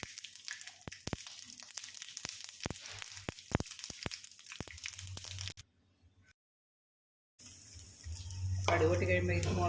കടുക് പൊട്ടി കഴിയുമ്പോൾ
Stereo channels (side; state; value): both; identical; correlation 1.00